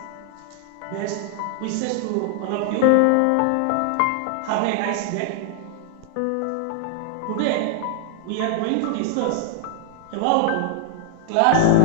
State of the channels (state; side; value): different; both; correlation 0.00